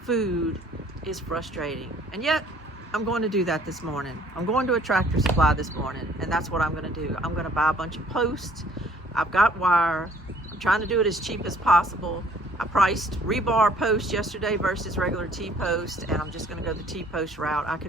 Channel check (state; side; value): normal; both; correlation 0.57